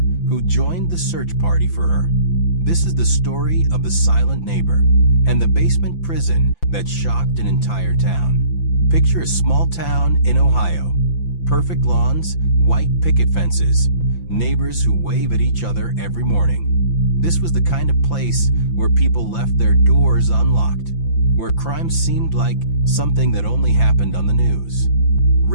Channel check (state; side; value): late; right; 5.9 ms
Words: who joined the search party for her. This is the story of the silent neighbor and the basement prison that shocked an entire town. Picture a small town in Ohio. Perfect lawns, white picket fences, neighbors who wave at each other every morning. This was the kind of place where people left their doors unlocked, where crime seemed like something that only happened on the news.